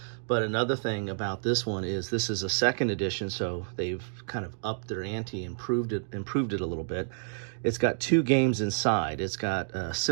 But another thing about this one is this is a second edition, so they've kind of upped their ante, improved it a little bit. It's got two games inside. It's got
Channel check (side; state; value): left; silent; digital silence